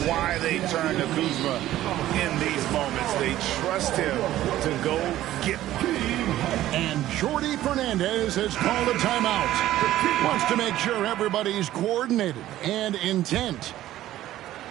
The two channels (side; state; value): left; quieter; 14.0 dB